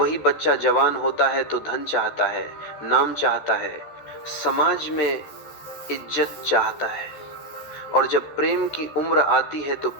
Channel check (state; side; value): late; right; 14 ms